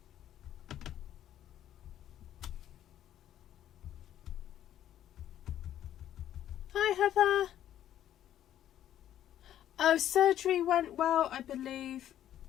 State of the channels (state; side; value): quieter; right; 11.5 dB